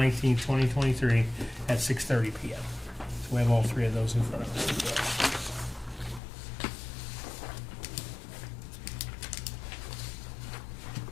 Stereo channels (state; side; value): drops out; right; at 6.2 s